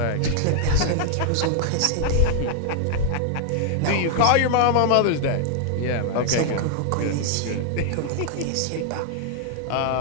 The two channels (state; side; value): different; both; correlation 0.00